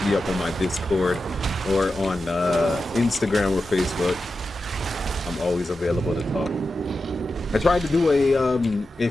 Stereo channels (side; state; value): both; normal; correlation 0.91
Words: me up on my Discord or on Instagram or Facebook. I'm always available to talk. I tried to do a